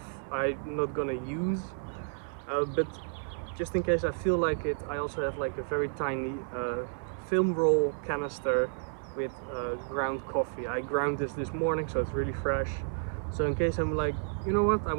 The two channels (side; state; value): left; silent; 56 dB below the other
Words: I'm not gonna use. But just in case I feel like it, I also have like a very tiny film roll canister with ground coffee. I ground this morning, so it's really fresh. So in case I'm like, you know what, I